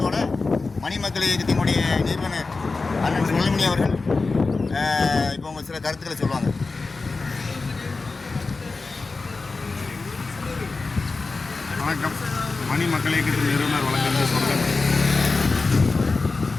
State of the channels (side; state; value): right; quieter; 3.9 dB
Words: மணிமக்கள் இயக்கத்தினுடைய நிறுவனர் அண்ணன் சுழல்மணி அவர்கள் இப்போ உங்கள் சில கருத்துக்களை சொல்லுவாங்க. வணக்கம். மணிமக்கள் இயக்கத்தின் நிறுவனர் வழங்குகின்ற சொல்லுங்கள்.